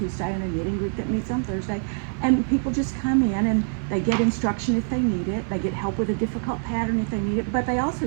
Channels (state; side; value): silent; left; 58 dB below the other